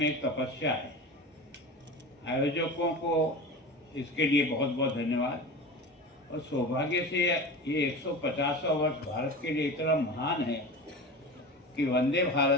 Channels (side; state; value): both; normal; correlation 0.30